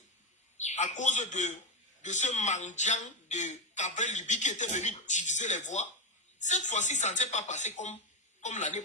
à cause de ce mendiant de Cabral Libi qui était venu diviser les voix, cette fois-ci, ça ne s'est pas passé comme l'année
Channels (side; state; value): both; normal; correlation 0.09